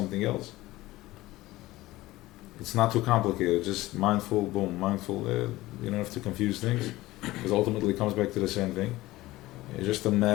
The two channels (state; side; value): quieter; right; 18.0 dB